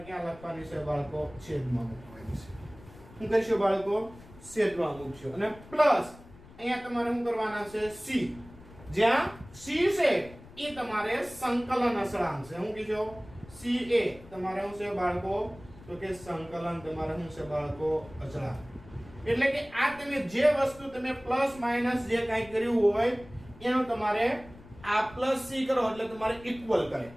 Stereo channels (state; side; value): noise; left; rumble, 20 dB below the sound